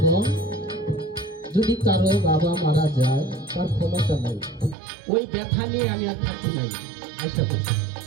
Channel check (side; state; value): left; drops out; at 4.8 s